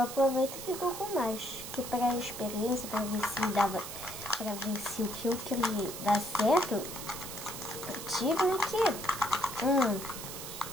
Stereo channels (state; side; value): noise; right; hiss, 9 dB below the sound